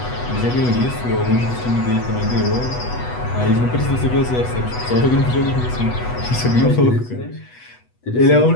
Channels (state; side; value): late; right; 8.1 ms